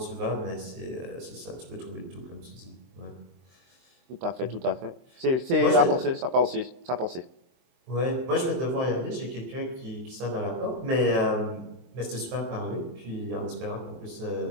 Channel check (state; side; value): late; left; 23 ms